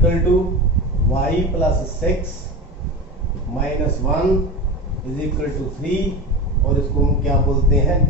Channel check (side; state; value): both; normal; correlation 0.26